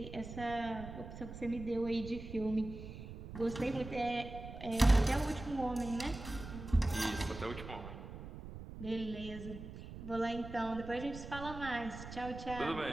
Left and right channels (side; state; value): right; noise; rumble, 11 dB below the sound